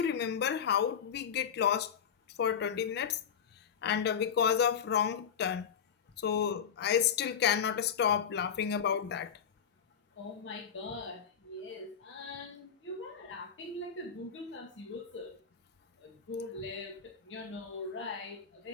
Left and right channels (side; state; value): right; quieter; 7.6 dB